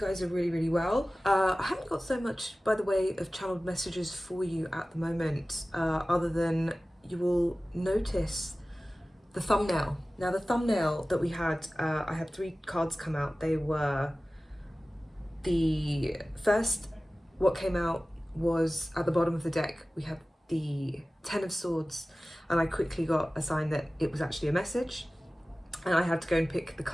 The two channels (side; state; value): both; normal; correlation 0.97